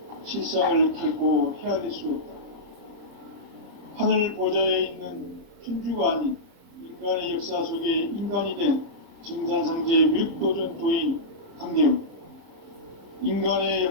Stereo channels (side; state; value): left; late; 30 ms